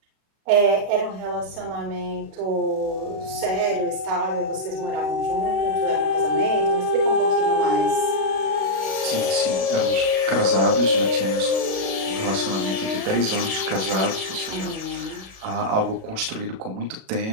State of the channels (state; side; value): late; left; 37 ms